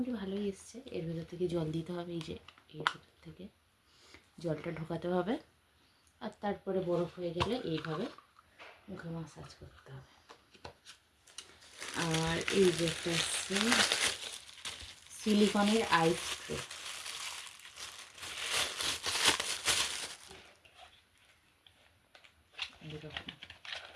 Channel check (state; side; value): identical; both; correlation 1.00